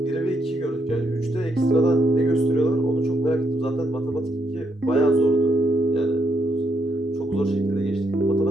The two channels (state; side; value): normal; both; correlation 0.76